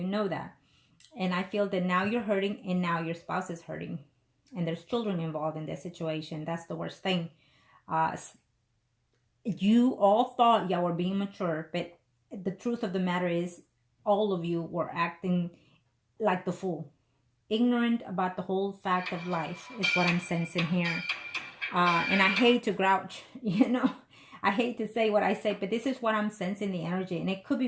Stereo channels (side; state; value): both; identical; correlation 1.00